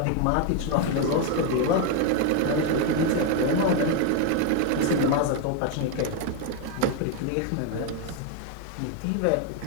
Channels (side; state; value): both; different; correlation 0.01